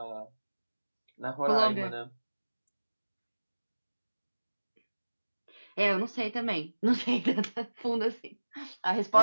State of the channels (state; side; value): inverted; both; correlation -1.00